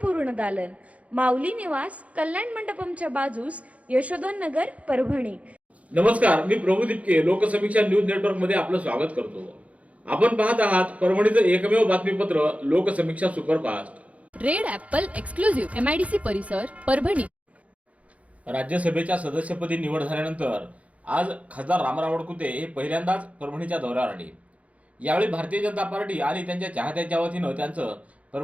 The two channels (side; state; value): left; late; 0.066 ms